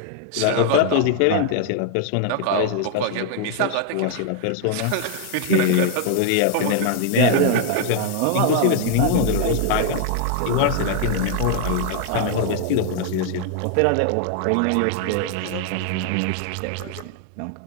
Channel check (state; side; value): different; both; correlation 0.00